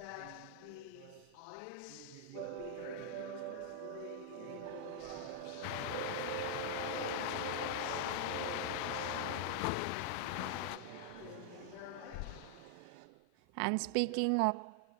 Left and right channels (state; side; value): different; both; correlation -0.01